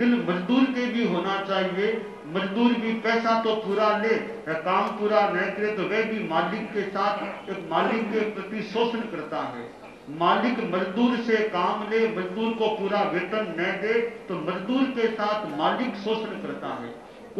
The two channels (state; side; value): identical; both; correlation 1.00